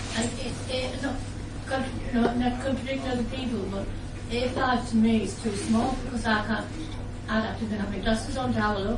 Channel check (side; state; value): both; identical; correlation 1.00